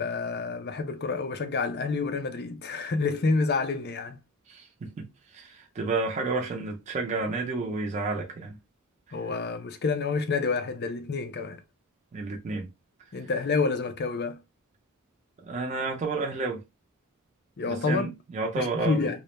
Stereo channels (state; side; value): normal; both; correlation 0.29